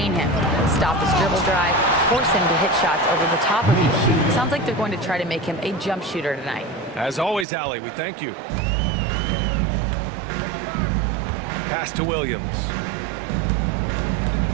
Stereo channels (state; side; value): drops out; left; at 7.5 s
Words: him. Stop his dribble drive, force him to hit shots over the top of you. Sounds like they're going to try to make him a jump shooter tonight. As always, Allie, we thank you. Pass to Williams.